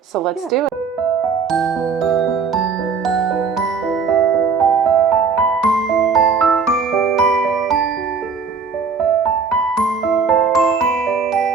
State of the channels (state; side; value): quieter; left; 5.3 dB